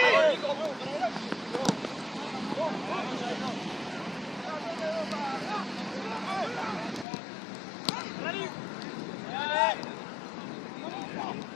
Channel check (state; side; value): drops out; right; at 7.1 s